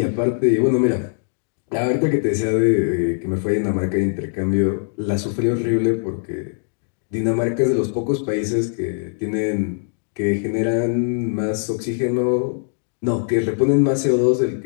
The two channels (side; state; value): right; silent; digital silence